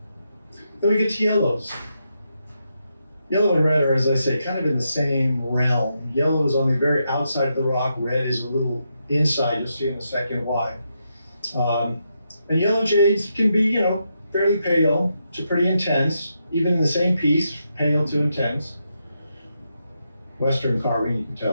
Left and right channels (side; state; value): both; inverted; correlation -0.83